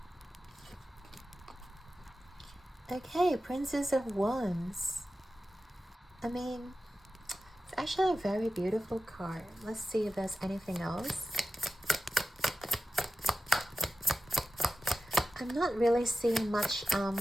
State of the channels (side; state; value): both; normal; correlation 0.93